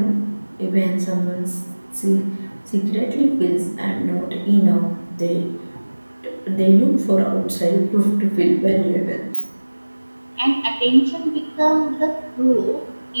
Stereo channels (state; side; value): inverted; both; correlation -1.00